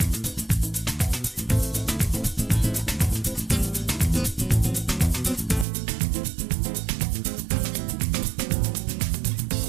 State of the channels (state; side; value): drops out; left; at 5.7 s